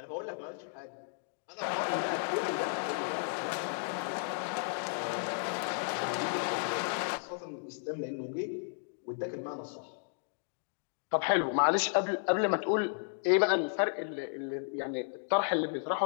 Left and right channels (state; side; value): silent; right; digital silence